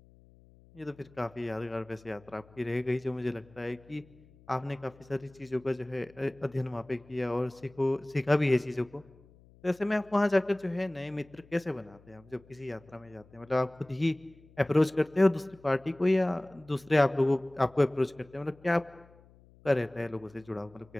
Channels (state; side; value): noise; left; hum, 26 dB below the sound